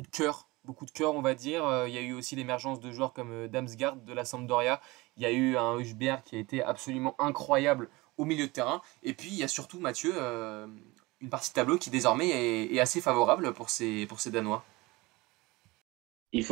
de cœur, on va dire. Il y a eu aussi l'émergence de joueurs comme Damsgaard de la Sampdoria. Il y a eu un Husberg qui a été absolument incroyable au milieu de terrain. Et puis, il y a surtout Mathieu, une partie de tableau qui désormais est assez favorable pour ces Danois. Il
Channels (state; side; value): quieter; left; 22.3 dB